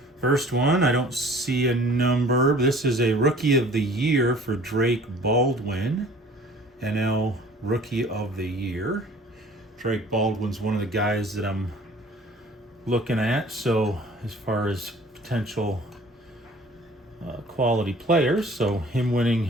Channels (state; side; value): normal; both; correlation 0.50